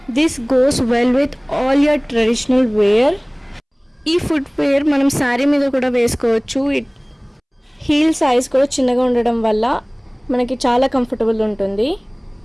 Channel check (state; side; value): identical; both; correlation 1.00